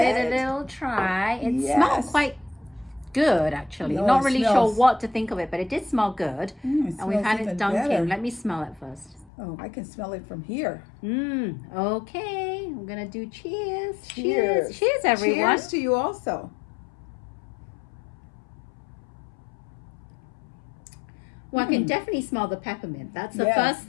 a little try. It smells quite good, actually. No, Not really sure what to think of it, but it did smell good. And we've had it dunking. Better. Let me smell it first. Oh, I can smell it from here. Okay. I'm going to do cheers. Cheers. Cheers, everyone. Cheers to you also. Well, I can definitely smell the peppermint. That's the first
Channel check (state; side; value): drops out; right; at 9.3 s